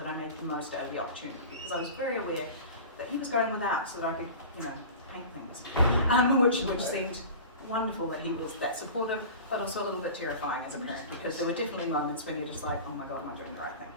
I made the most out of the opportunity, because I was very aware that he was going without so that I could, you know, paint things, which seemed wonderful that he was that supportive, but also a little bit terrifying as a parent, because there were definitely moments when you're just like, oh my God, am I doing the right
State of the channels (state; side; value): inverted; both; correlation -0.36